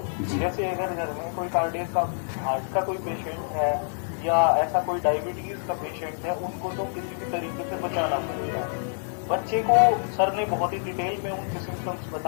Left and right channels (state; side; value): silent; right; digital silence